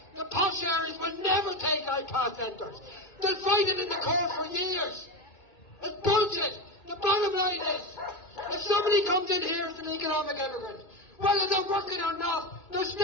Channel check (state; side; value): late; right; 2.3 ms